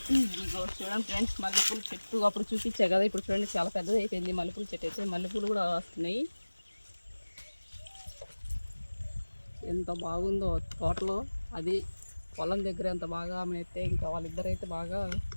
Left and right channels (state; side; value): inverted; both; correlation -1.00